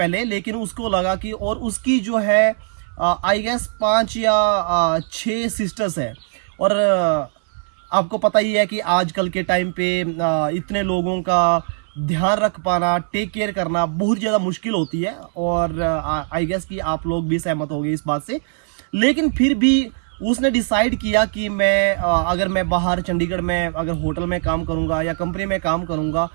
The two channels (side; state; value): left; silent; 65 dB below the other